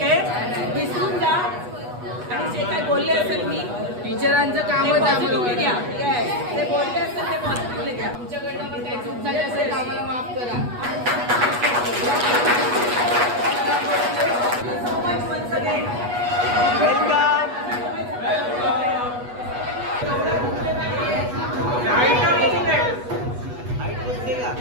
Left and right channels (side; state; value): left; late; 8.2 ms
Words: विसरून जा. आणि जे काय बोलले असेल मी टीचरांचं कामच पॉझिटिव्हली घ्या. येस, ते बोलले असेल ते पॉझिटिव्हली घ्या. तुमच्याकडनं पण काही चूक झाली असेल तर आम्हाला माफ करा. So much once again.